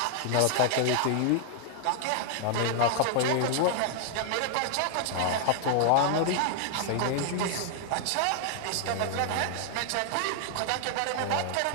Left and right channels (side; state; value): both; different; correlation 0.00